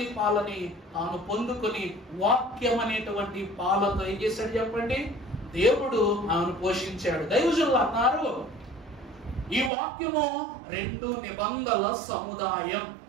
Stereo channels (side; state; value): left; drops out; at 9.7 s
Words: పాలని తాను పొందుకొని వాక్యం అనేటువంటి పాలతో ఏం చేశాడు చెప్పండి? దేవుడు ఆమెను పోషించాడు. దైవజనులు అన్నారు, ఈ వాక్యము 2 నిబంధనల సముదాయం.